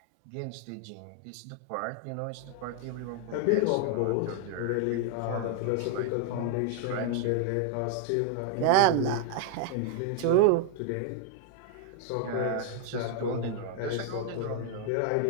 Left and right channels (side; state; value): both; different; correlation 0.00